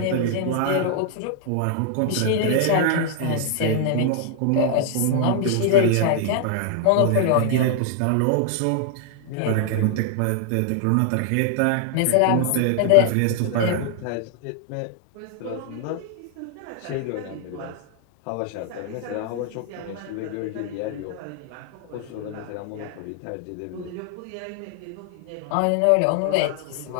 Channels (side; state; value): both; different; correlation 0.00